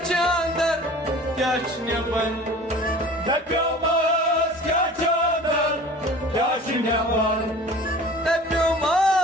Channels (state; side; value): normal; both; correlation 0.42